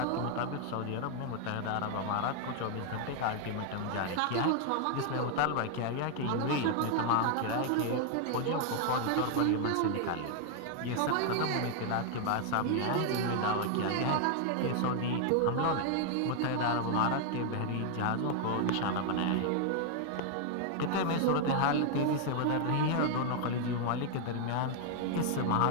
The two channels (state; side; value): different; both; correlation 0.00